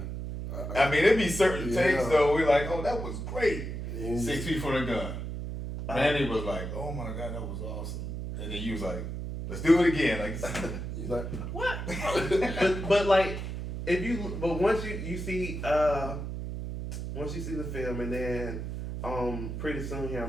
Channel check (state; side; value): noise; right; hum, 5 dB below the sound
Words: I mean, it'd be certain takes though. We're like, oh, that was great. 6 feet from the gun. Manny was like, oh my God, that was awesome. And then you was like, let's do it again. He's like, what? but once you see the film, and then pretty soon here